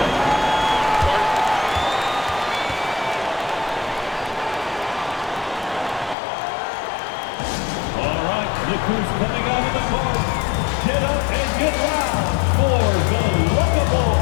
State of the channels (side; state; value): right; drops out; at 6.2 s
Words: Look who's coming out of the court. Get up and get loud for the Lookable.